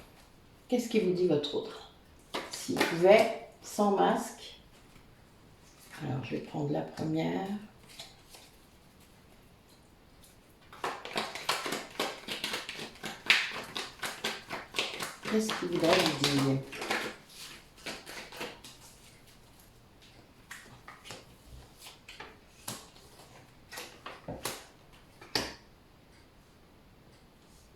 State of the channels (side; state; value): both; identical; correlation 1.00